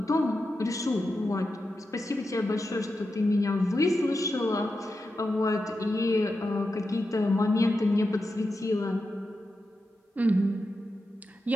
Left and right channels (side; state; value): both; normal; correlation 0.89